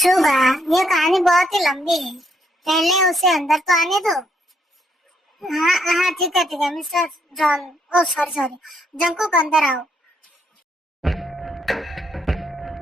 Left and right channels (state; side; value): normal; both; correlation 0.73